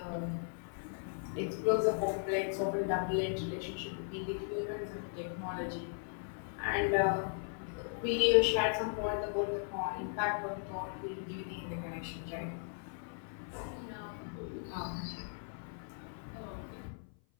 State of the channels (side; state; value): right; silent; 53 dB below the other